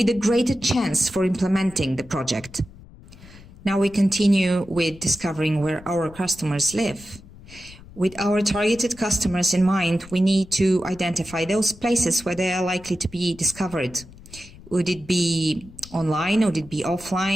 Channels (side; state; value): left; noise; rumble, 20 dB below the sound